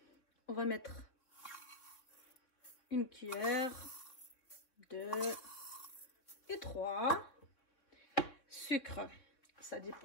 On va mettre une cuillère, 2 et 3. Sucre. Ça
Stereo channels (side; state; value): right; late; 3.9 ms